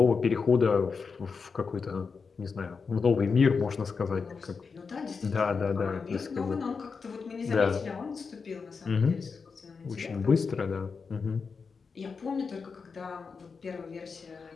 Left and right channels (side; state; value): right; quieter; 5.2 dB